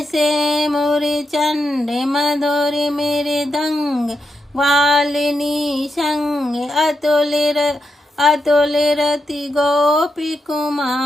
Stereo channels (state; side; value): normal; both; correlation 0.85